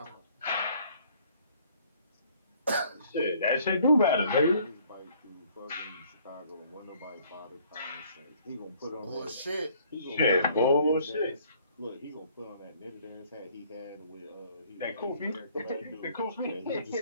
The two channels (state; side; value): inverted; both; correlation -0.60